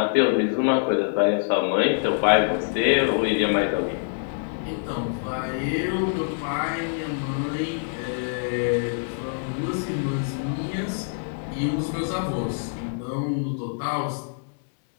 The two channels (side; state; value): right; silent; 61 dB below the other